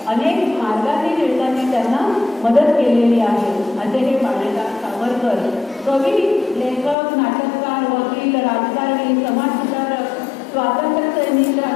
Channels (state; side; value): drops out; right; at 7.0 s